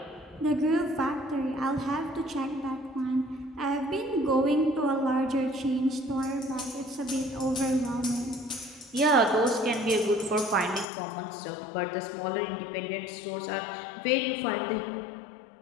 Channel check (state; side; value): drops out; right; at 10.9 s